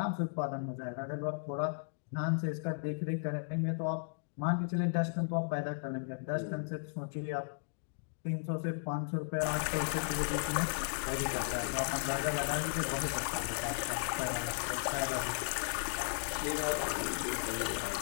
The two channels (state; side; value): silent; right; digital silence